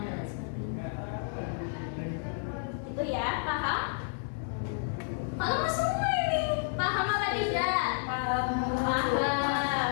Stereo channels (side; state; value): right; silent; 57 dB below the other